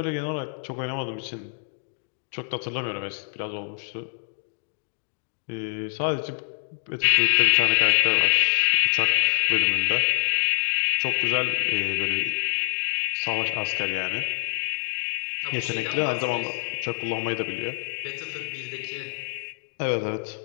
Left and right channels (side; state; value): right; silent; digital silence